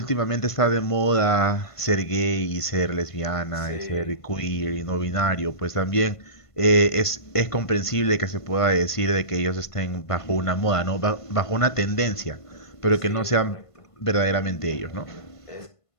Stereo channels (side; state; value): right; late; 1.5 ms